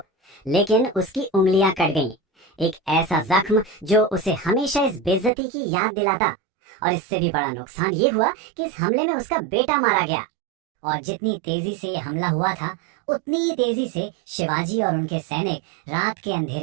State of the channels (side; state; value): left; drops out; at 5.3 s